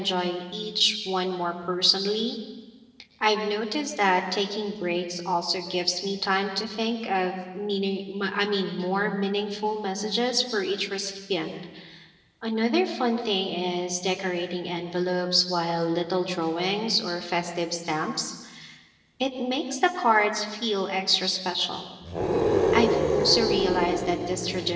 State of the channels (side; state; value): both; identical; correlation 1.00